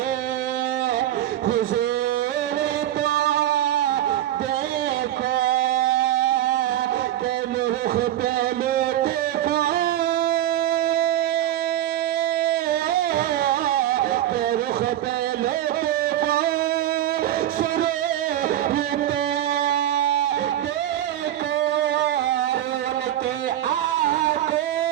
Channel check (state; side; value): quieter; left; 12.7 dB